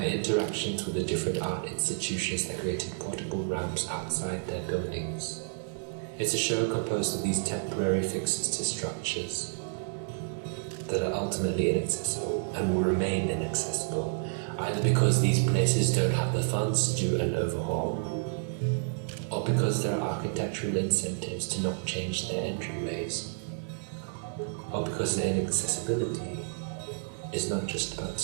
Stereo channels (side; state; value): left; silent; digital silence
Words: interactions with the different art institutions that created portable ramps outside their buildings. It's a show composed of these temporary fixes to structures that are ultimately inaccessible and will remain inaccessible, either because these places don't have the funds to do an overhaul, or because there are architectural incentives to not change their entryways, or because their inaccessibility is not just about